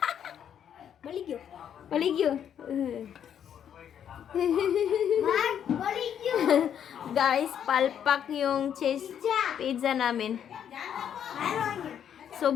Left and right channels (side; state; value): right; quieter; 9.0 dB